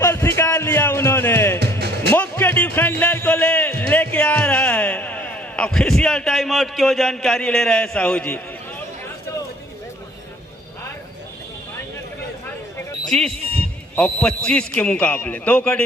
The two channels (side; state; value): both; normal; correlation 0.58